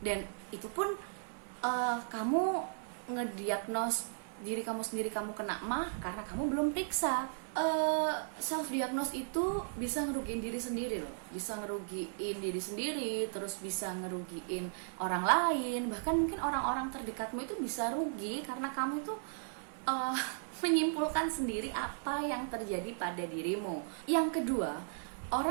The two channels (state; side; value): silent; left; 54 dB below the other